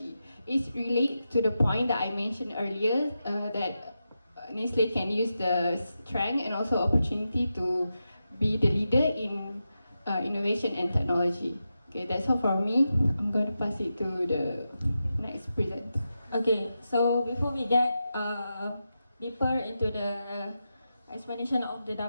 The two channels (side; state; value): both; inverted; correlation -0.89